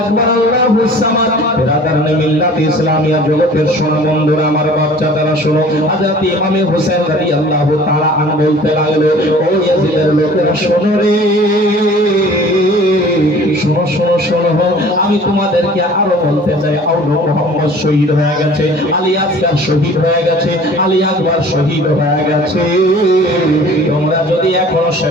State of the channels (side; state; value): both; normal; correlation 0.47